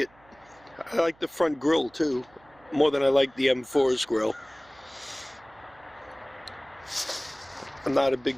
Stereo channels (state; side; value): noise; right; hum, 29 dB below the sound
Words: I like the front grille too, more than I like the M4's grille. I'm not a